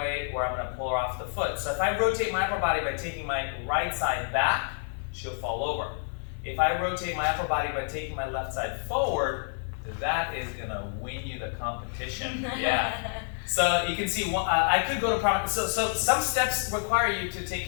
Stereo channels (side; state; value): right; silent; digital silence